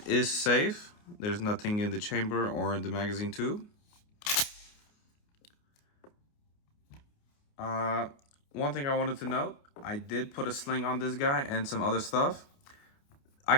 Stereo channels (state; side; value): late; right; 29 ms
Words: is safe. There's nothing in the chamber or in the magazine tube. One thing I wanted to note, I did put a sling on this guy and some other stuff. I